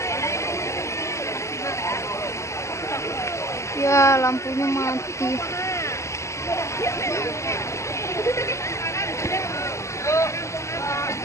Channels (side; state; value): right; late; 0.14 ms